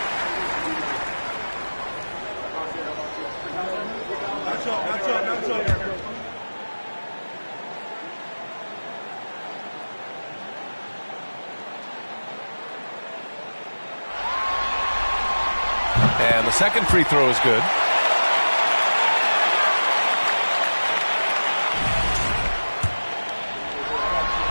And the second free throw is good.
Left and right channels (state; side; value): inverted; both; correlation -1.00